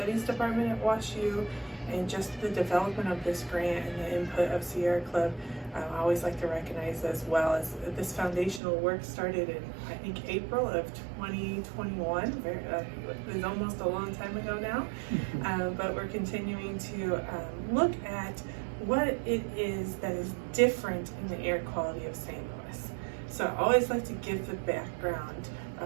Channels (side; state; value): left; drops out; at 8.6 s